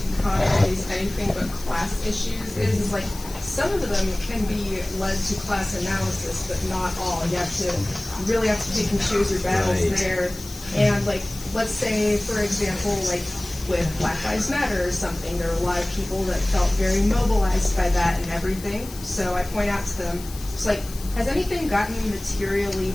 caught on these anything but class issues is like some of them can be led to class analysis, but not all. You really have to pick and choose your battles there. And like, let's say, for example, like with Black Lives Matter or something, there were a lot of people that felt very mobilized by that and everything. So I point out to them, it's like, has anything gotten materially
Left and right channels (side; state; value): left; noise; hiss, 15 dB below the sound